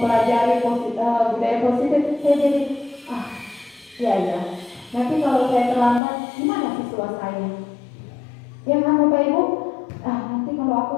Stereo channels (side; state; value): right; drops out; at 6.0 s